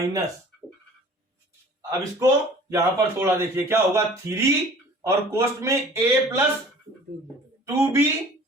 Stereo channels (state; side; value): normal; both; correlation 0.48